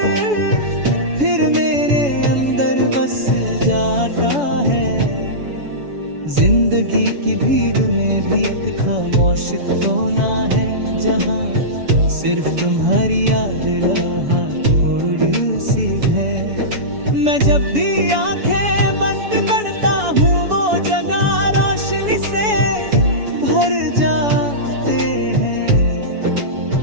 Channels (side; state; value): left; late; 7.1 ms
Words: फिर मेरे अंदर बस जाता है। जिंदगी की भीड़ में भी एक खामोश कोना है, जहाँ सिर्फ तुम्हारी याद रहा थोड़ी सी है। मैं जब भी आंखें बंद करता हूँ, वो जगह रोशनी से भर जाते हैं।